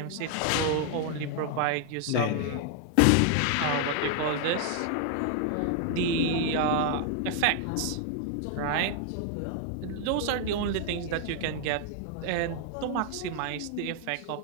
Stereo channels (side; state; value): both; different; correlation 0.00